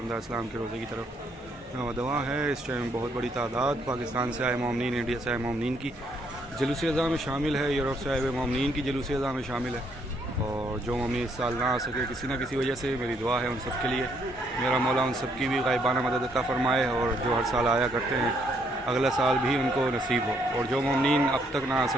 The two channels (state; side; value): normal; both; correlation 0.71